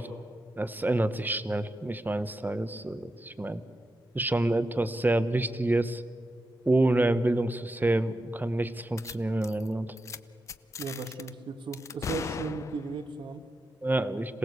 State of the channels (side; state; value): both; normal; correlation 0.88